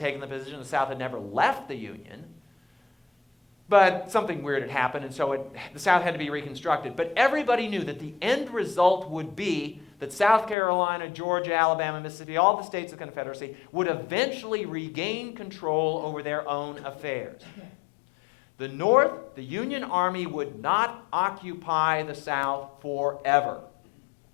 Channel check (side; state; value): right; drops out; at 10.6 s